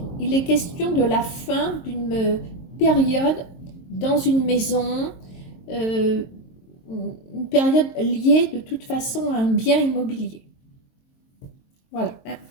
il est question de la fin d'une période dans une maison, une période liée de toute façon à un bien immobilier. Voilà.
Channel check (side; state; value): right; late; 22 ms